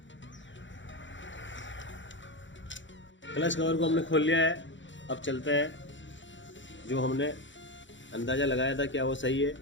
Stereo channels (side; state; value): right; late; 0.54 ms